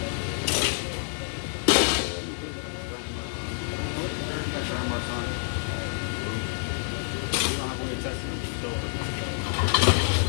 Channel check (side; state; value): right; silent; digital silence